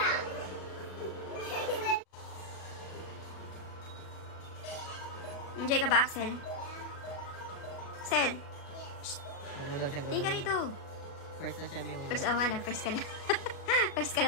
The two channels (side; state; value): right; late; 37 ms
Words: Enjoy ka ba, Axel? Axel, Huwag mo daw siyang tingin ka gawin. rito. First na siya yung... First, oh nga na, first ka na. First ka